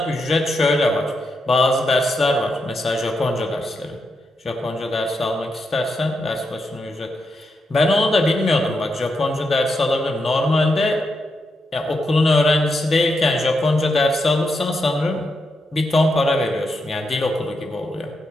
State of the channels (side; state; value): both; normal; correlation 0.84